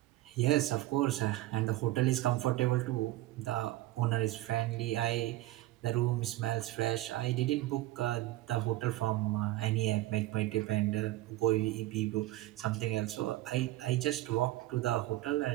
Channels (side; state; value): left; quieter; 16.7 dB